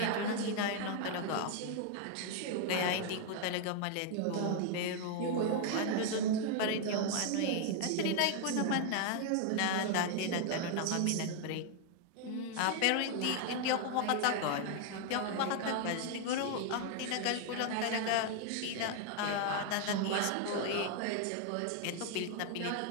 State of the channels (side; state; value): both; different; correlation 0.00